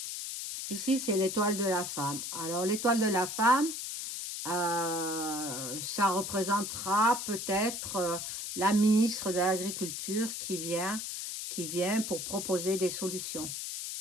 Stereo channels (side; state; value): left; noise; hiss, 5 dB below the sound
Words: Ici, c'est l'étoile de la femme. Alors, l'étoile de la femme, ça représentera peut-être la ministre de l'Agriculture qui vient pour proposer des solutions.